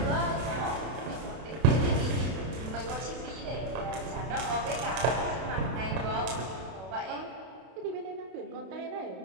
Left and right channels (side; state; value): left; late; 32 ms